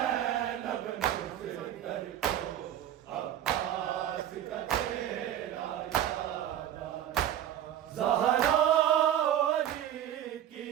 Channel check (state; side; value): quieter; left; 11.1 dB